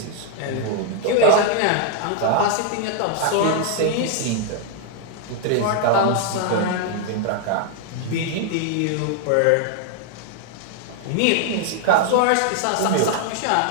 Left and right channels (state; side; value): different; both; correlation 0.00